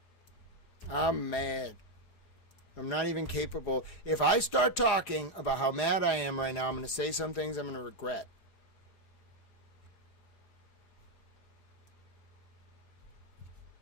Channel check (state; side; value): late; right; 4.8 ms